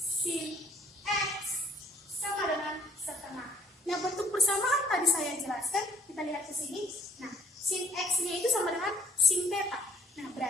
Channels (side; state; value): both; normal; correlation 0.58